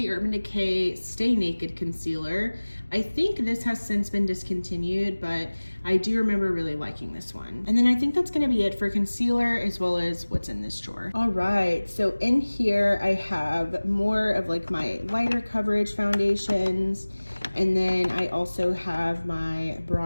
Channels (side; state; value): both; inverted; correlation -1.00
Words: Urban Decay Stay Naked Concealer. I think this has since been discontinued, but I do remember really liking this one. And then I think that's gonna be it for concealer as well as what's in this drawer. All right, so in here I have more of like my lighter coverage foundations, and then I also have my